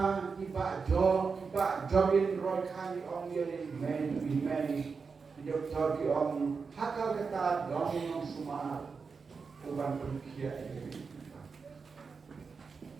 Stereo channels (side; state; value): left; quieter; 5.1 dB